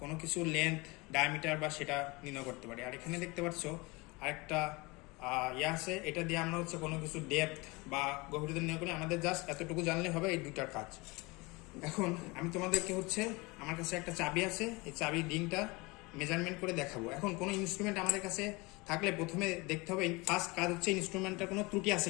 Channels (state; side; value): quieter; right; 25.1 dB